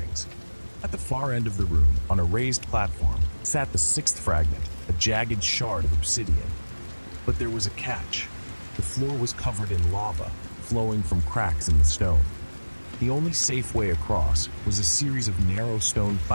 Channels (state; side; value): inverted; both; correlation -1.00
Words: At the far end of the room, on a raised platform, sat the 6th fragment, a jagged shard of obsidian. But there was a catch. The floor was covered in lava, flowing from cracks in the stone. The only safe way across was a series of narrow stone